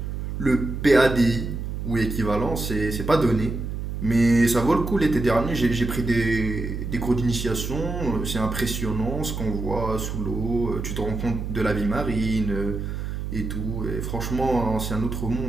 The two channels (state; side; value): noise; right; hum, 5 dB below the sound